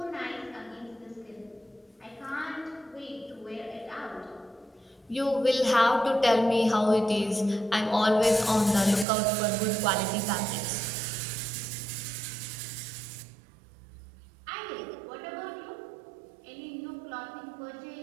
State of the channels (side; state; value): left; drops out; at 9.1 s